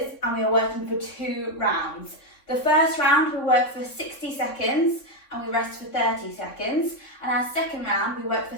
and we are working for 2 rounds. The first round we work for 60 seconds and we rest for 30 seconds. And our second round we work for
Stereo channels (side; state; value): right; late; 3.6 ms